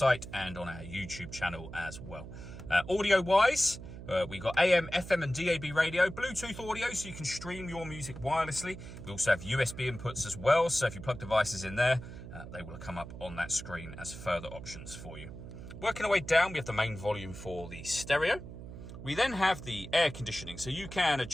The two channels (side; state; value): right; noise; hum, 12 dB below the sound